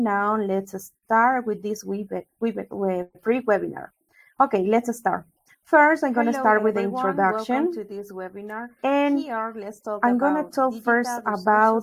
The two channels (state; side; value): identical; both; correlation 1.00